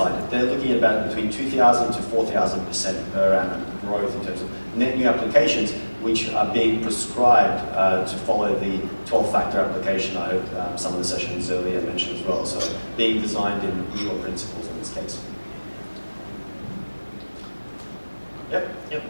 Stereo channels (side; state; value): both; inverted; correlation -1.00